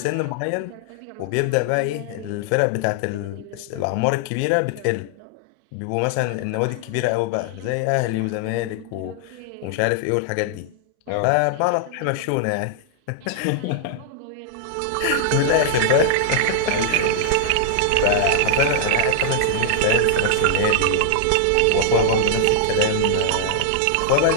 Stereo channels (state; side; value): different; both; correlation 0.00